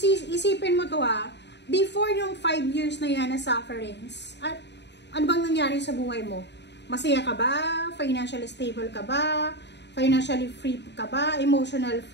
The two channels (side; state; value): right; late; 0.50 ms